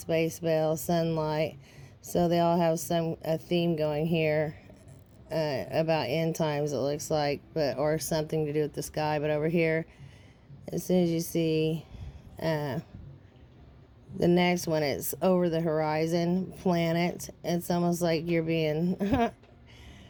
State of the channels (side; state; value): both; identical; correlation 1.00